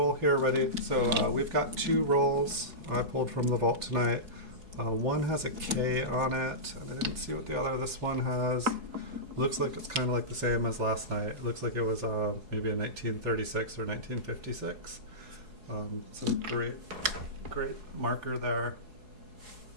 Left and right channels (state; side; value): late; left; 4.7 ms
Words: here ready. So we've got two rolls I pulled from the vault tonight. One has a K on it. I didn't see what the other, this one has. Looks like it's kind of like the same as last night. It looks like it was maybe a 1936 or 1956. Some great marker there.